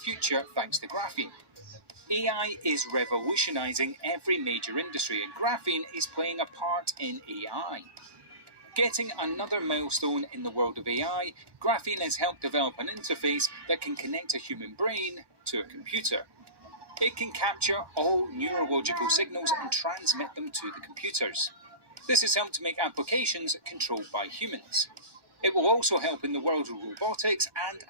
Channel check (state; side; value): late; left; 1.2 ms